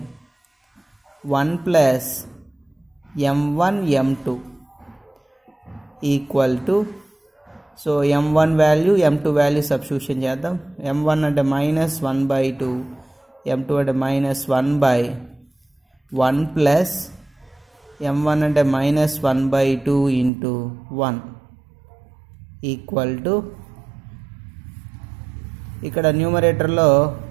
1 plus m1 m2 equal to, so m1 value m2 value substitution చేద్దాం. m1 అంటే -1/2, m2 అంటే -1/1 plus m1 అంటే -1/2 into 1 equal to, ఇక్కడ న్యూమరేటర్లో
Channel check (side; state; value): left; drops out; at 20.3 s